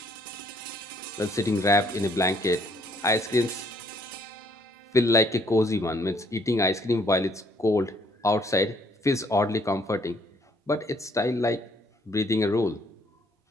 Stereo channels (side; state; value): both; normal; correlation 0.64